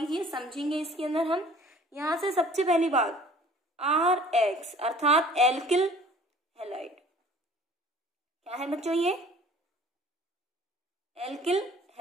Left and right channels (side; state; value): both; normal; correlation 0.50